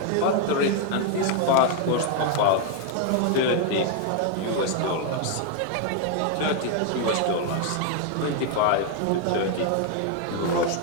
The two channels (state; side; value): different; both; correlation 0.00